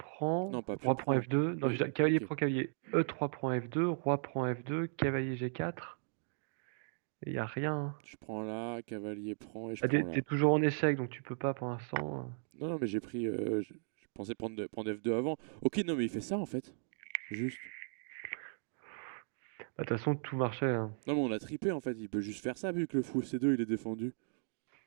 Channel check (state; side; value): silent; left; digital silence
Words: Non, pas pion roi prend prend. F2. Non, Oui, cavalier ok. prend cavalier. E3 prend F2, roi prend F2, cavalier G4. Il y a rien, hein. Je prends là, cavalier prend et je Ah, prends t'es là. toujours en échec, donc tu peux pas pour l'instant. Non, non, mais j'ai pris. Je pensais prendre F2 avant. Ok, non, mais il fait ça en fait. Juste. Bah, de toute façon, tout marchait, hein. Non, mais on a tripé en fait. Il peut juste faire ça vu que le fou C2 il est défendu.